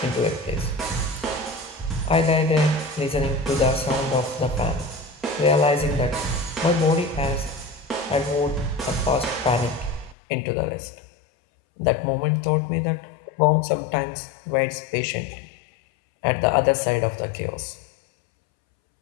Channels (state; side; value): drops out; right; at 10.2 s